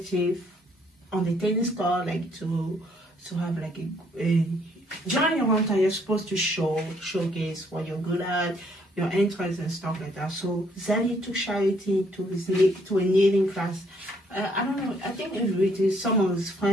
on the tennis court, like to have like a during your hometown, you're supposed to showcase what you're good at, your interests and stuff like that. So Xavier took Charity to a kneeling class. I don't know. I think it's with some of his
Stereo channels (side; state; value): both; normal; correlation 0.67